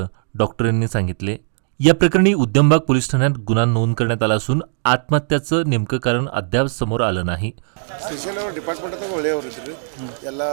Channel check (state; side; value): silent; left; digital silence